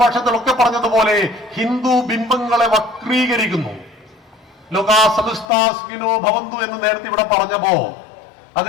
ഭാഷണത്തിലൊക്കെ പറഞ്ഞതുപോലെ ഹിന്ദു ബിംബങ്ങളെ വക്രീകരിക്കുന്നു. ലോകാ സമസ്താ സുഖിനോ ഭവന്തു എന്ന് നേരത്തെ ഇവിടെ പറഞ്ഞപ്പോ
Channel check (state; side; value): drops out; right; at 5.5 s